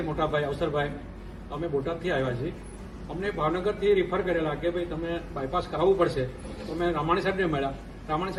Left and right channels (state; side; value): identical; both; correlation 1.00